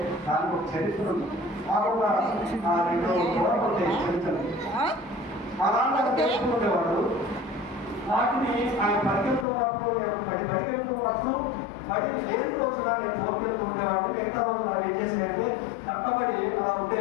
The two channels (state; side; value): drops out; right; at 9.5 s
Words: దానికి ఒక చరిత్ర ఉంది. మాకు రెండు గోడలు ఉంటాయి చరిత్రలు. మా నాన్న తెలుసుకునేవాడు. వాటిని ఆయన పరిగెత్తున్నప్పుడు బడి లేని రోజున నేను తోడుకెళ్తూ ఉండేవాడు. మిగతా రోజు మనం ఏం చేసేదంటే కట్టబడి అలా